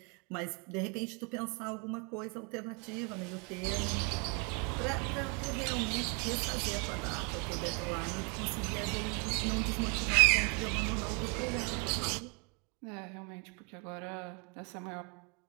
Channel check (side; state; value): left; quieter; 34.7 dB